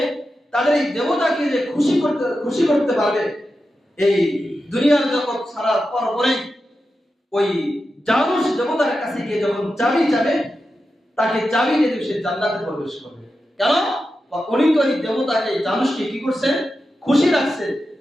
তাদের এই দেবতাকে যে খুশি করতে পারবে, এই দুনিয়ার জগৎ ছাড়ার পরে ওই জানুস দেবতার কাছে গিয়ে যখন চাবি চাবে, তাকে চাবি দিয়ে সে জান্নাতে প্রবেশ করবে। কেন? উনি তো এই দেবতাকে, জানুসকে কি করছে? খুশি রাখছে,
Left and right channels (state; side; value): normal; both; correlation 0.90